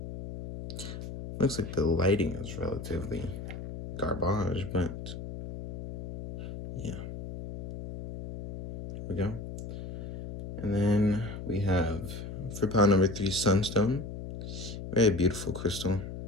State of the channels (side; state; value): left; noise; hum, 9 dB below the sound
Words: Looks like the lighting is relatively garbage, but yeah. Here we go. And then we have, for pile number 3, sunstone. Very beautiful crystal.